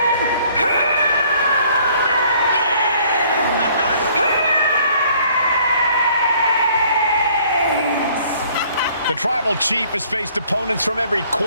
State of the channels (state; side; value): inverted; both; correlation -0.59